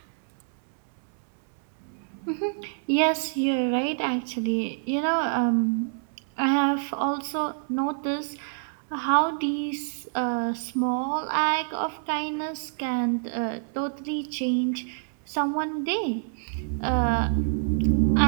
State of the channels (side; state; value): left; silent; 60 dB below the other